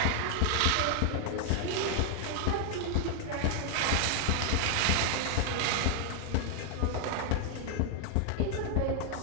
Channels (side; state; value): both; different; correlation 0.00